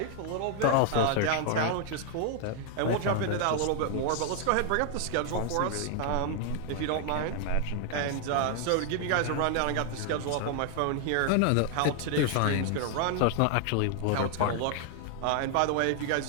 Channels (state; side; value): different; both; correlation 0.00